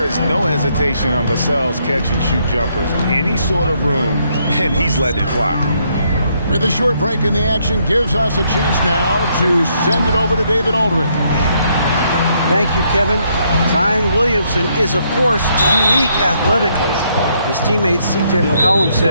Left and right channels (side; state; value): both; inverted; correlation -0.73